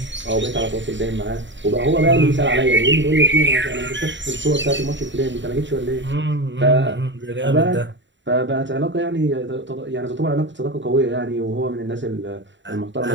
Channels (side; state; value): left; late; 0.54 ms